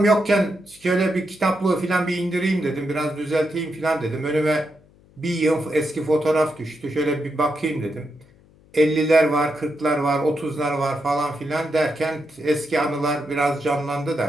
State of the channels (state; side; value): noise; left; hum, 29 dB below the sound